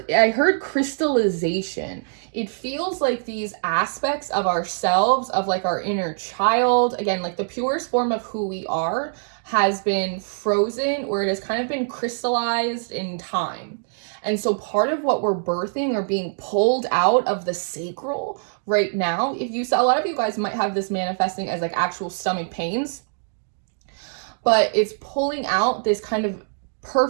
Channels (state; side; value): silent; left; digital silence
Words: I heard crystallization. It feels like these aspects of ourselves, of like our inner child, again, like the purest form of who we are, has been frozen, or it has kind of been crystallized in time. And so part of what we're birthing or being pulled out of the sacral right now. If you saw, a lot of you guys might have this manifesting as like actual stomach pains, but it's pulling out this kind of